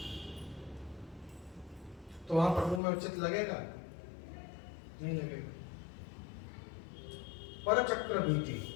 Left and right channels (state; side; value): drops out; right; at 2.8 s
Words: तो वहां प्रभु में उचित लगेगा? नहीं लगेगा। परचक्र भीति,